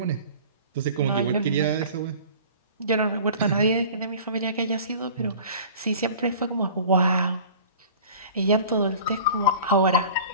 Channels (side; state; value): both; inverted; correlation -0.43